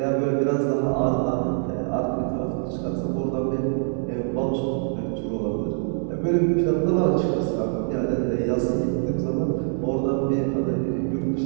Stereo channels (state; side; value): silent; left; digital silence